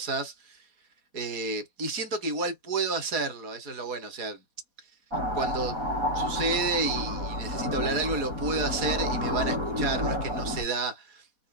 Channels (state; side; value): late; left; 4.2 ms